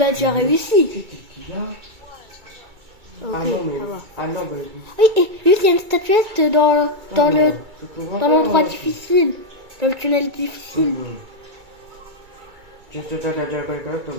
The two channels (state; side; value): late; left; 2.3 ms